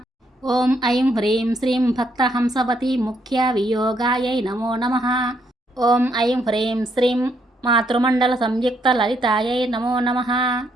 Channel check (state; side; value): normal; both; correlation 0.74